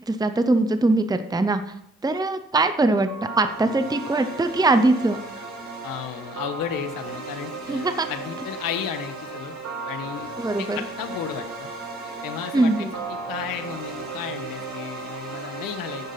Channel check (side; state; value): both; normal; correlation 0.62